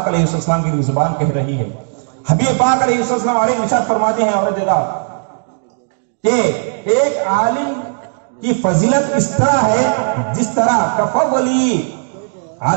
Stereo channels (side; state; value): left; silent; 65 dB below the other